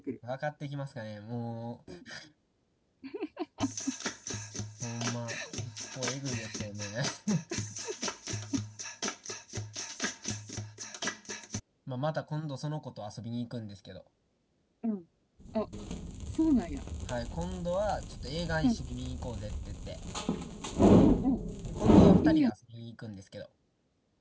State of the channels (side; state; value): both; identical; correlation 1.00